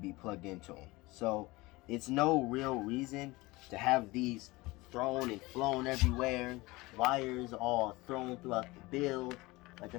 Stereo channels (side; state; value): right; quieter; 21.7 dB